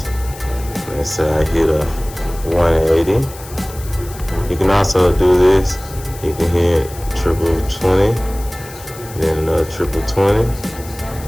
Let's say I hit a 180. You can also do this. You can hit triple 20, then another triple 20,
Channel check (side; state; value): left; noise; hiss, 17 dB below the sound